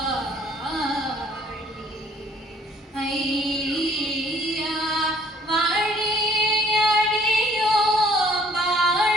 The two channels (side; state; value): both; normal; correlation 0.59